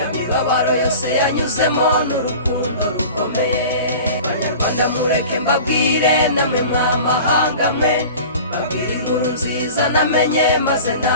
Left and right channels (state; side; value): inverted; both; correlation -0.39